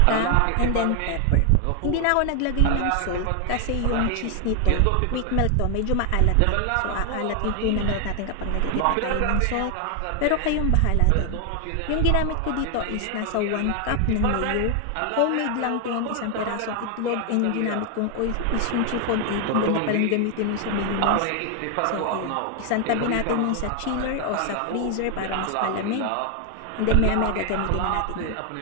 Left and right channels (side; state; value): both; different; correlation 0.00